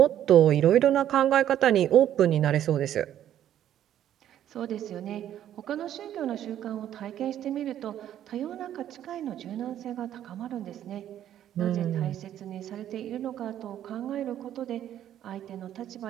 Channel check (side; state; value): left; quieter; 11.2 dB